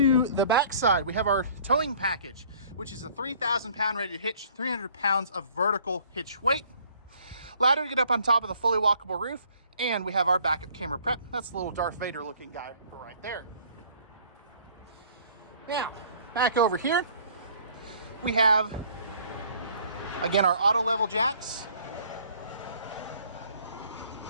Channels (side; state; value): both; inverted; correlation -0.56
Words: the back side, we have our towing package, which is a 3,000 pound rated hitch, 300 pounds of vertical hitch weight. Ladder to get up on top of the fully walkable roof, and we have our backup camera prep. That's the little Darth Vader looking guy right there. Now, back over here, we have, again, our auto level jacks,